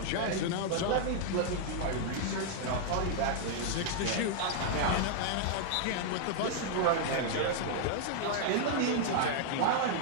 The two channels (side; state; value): both; different; correlation -0.01